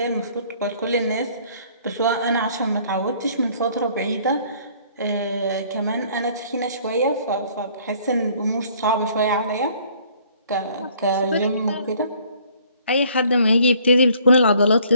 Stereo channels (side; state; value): both; inverted; correlation -0.59